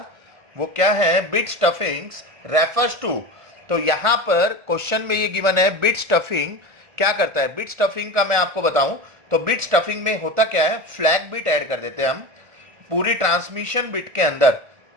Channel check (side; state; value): left; late; 1.4 ms